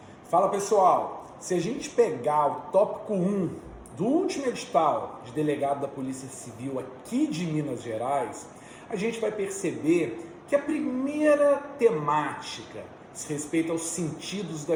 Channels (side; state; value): both; identical; correlation 1.00